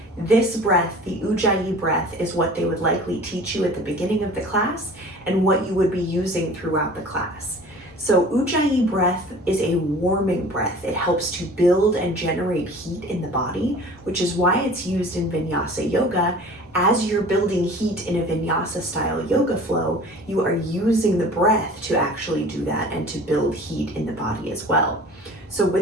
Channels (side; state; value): both; normal; correlation 0.44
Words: this breath, the Ujjayi breath, is what they would likely teach you at the beginning of the class and what you would be using throughout the class. So Ujjayi breath is a warming breath. It helps to build and generate heat in the body, which is why it's used in Vinyasa yoga. As you're building heat in a Vinyasa style yoga flow, you are using the breath to actually do that and to build heat in the body as well. So